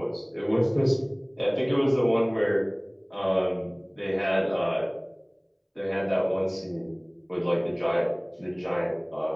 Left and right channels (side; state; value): both; identical; correlation 1.00